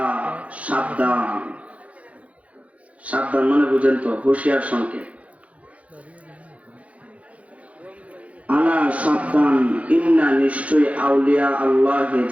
সাবধান সাবধান মানে বুঝেন তো হুঁশিয়ার সংকেত আলা সাবধান ইন্না নিশ্চয়ই আউলিয়া আল্লাহ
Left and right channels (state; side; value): late; left; 0.065 ms